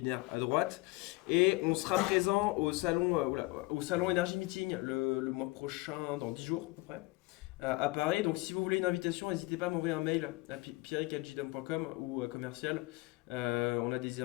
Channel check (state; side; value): quieter; right; 23.2 dB